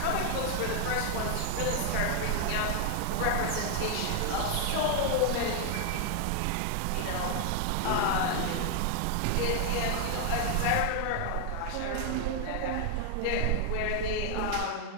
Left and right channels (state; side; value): different; both; correlation 0.00